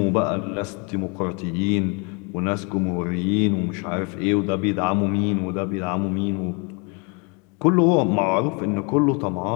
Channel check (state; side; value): quieter; right; 32.8 dB